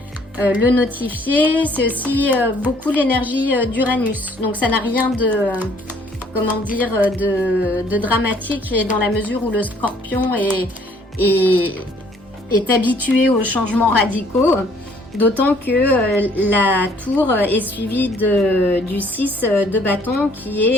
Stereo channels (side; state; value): both; normal; correlation 0.61